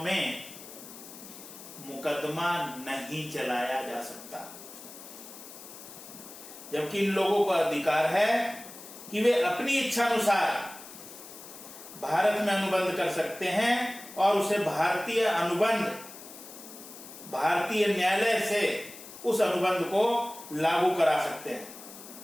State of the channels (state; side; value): noise; left; hiss, 15 dB below the sound